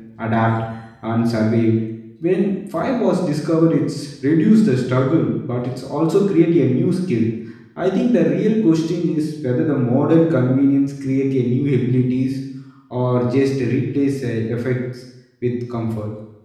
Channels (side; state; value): both; identical; correlation 1.00